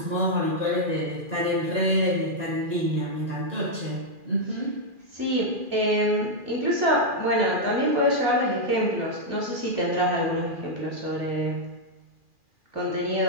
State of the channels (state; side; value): late; left; 2.4 ms